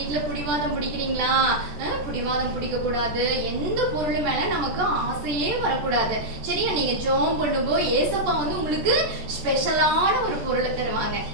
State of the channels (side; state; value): left; late; 14 ms